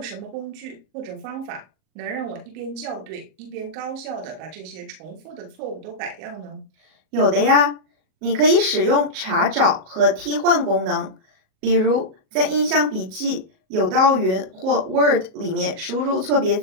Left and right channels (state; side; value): late; left; 37 ms